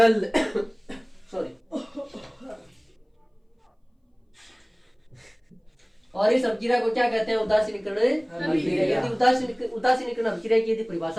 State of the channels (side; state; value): both; identical; correlation 1.00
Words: सॉरी। और इस अपक्रिया को क्या कहते हैं? उदासीनीकरण अपक्रिया। यदि उदासीनीकरण अपक्रिया की यदि